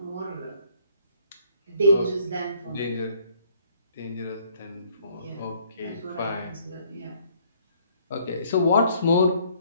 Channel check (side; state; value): both; inverted; correlation -0.62